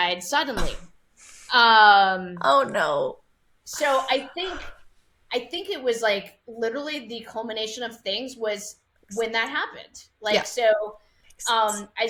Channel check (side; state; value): both; identical; correlation 1.00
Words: suddenly. Oh no. So I think it was like literally the culmination of things was when that happened. Like, so